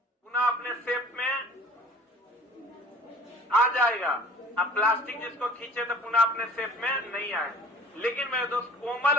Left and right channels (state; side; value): normal; both; correlation 0.48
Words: अपने शेप में आ जाएगा। अब प्लास्टिक जिसको खींचे तो पुनः अपने शेप में नहीं आए। लेकिन मेरे दोस्त कोमल,